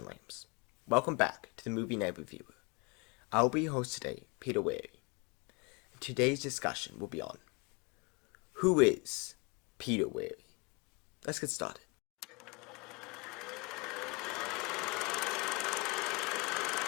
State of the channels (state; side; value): quieter; right; 29.6 dB